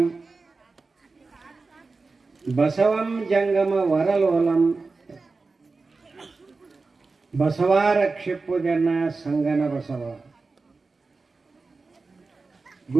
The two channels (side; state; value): left; quieter; 4.0 dB